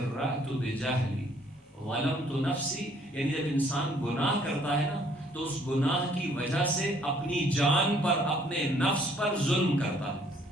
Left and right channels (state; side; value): normal; both; correlation 0.62